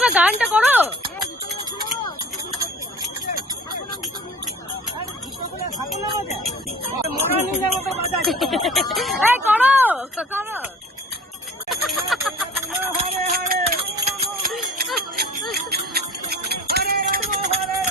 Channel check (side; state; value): both; normal; correlation 0.46